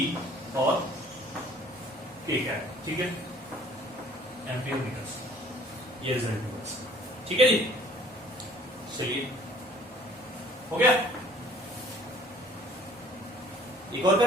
और के कैप, ठीक है, एम्पियर मीटर्स। ये रिजल्ट होगा, ठीक है जी। चलिए, हो गया। एक और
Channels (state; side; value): normal; both; correlation 0.54